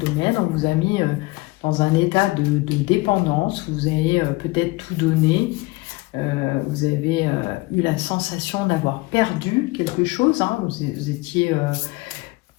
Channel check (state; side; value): quieter; right; 22.5 dB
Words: on vous a mis dans un état de dépendance, vous avez peut-être tout donné, vous avez eu la sensation d'avoir perdu quelque chose, hein, vous étiez...